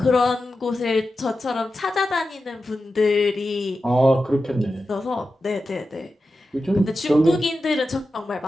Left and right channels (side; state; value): both; normal; correlation 0.92